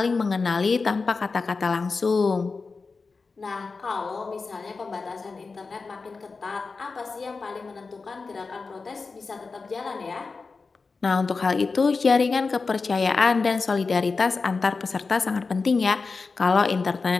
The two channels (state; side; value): quieter; right; 4.3 dB